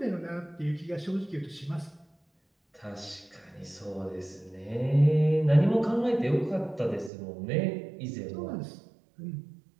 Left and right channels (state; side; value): drops out; left; at 7.1 s